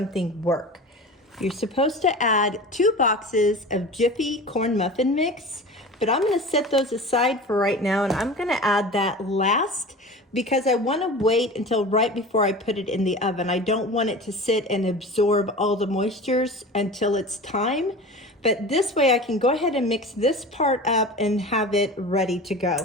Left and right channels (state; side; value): normal; both; correlation 0.34